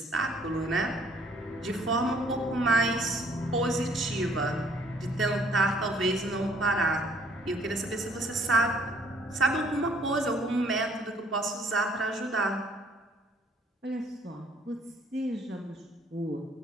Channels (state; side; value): normal; both; correlation 0.62